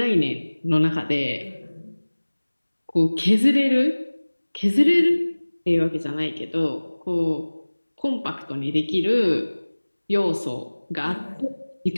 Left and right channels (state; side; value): inverted; both; correlation -1.00